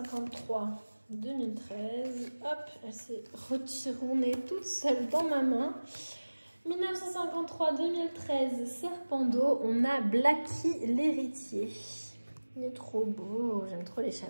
2013, hop, elle s'est retournée toute seule dans ma main. 1953-2013, serpent d'eau, on a Blacky l'héritier. Il est trop beau, j'aime trop les chats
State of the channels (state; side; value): inverted; both; correlation -1.00